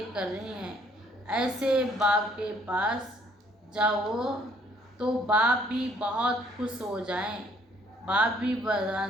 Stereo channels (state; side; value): normal; both; correlation 0.63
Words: कर रही हैं, ऐसे बाप के पास जाओ तो बाप भी बहुत खुश हो जाएं, बाप भी